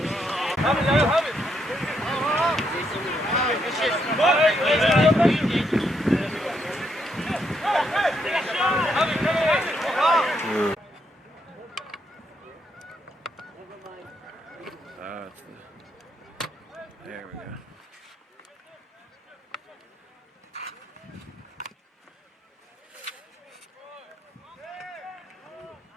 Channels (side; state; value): both; normal; correlation 0.77